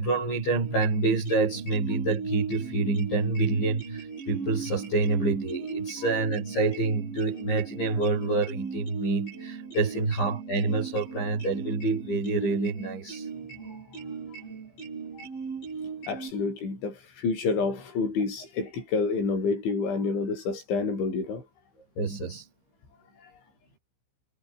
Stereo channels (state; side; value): late; right; 15 ms